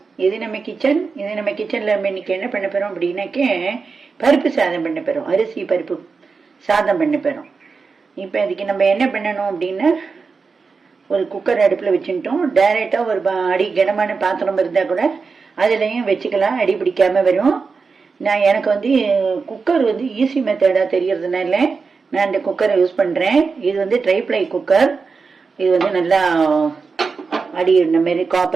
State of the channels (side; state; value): left; quieter; 4.8 dB